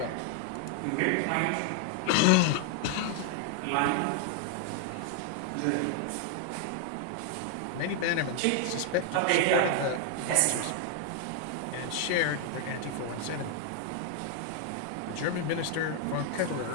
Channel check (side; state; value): both; different; correlation 0.00